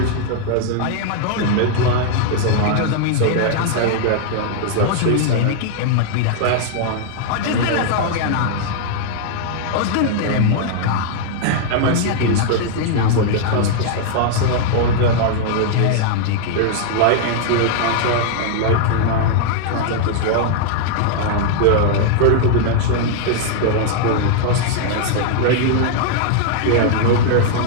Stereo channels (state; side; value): different; both; correlation -0.01